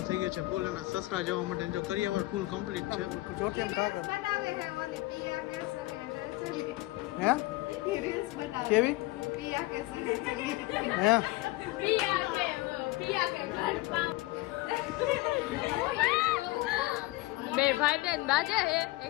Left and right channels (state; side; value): quieter; right; 19.9 dB